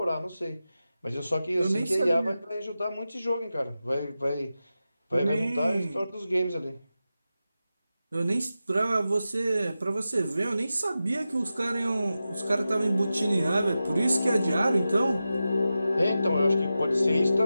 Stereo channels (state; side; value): inverted; both; correlation -0.92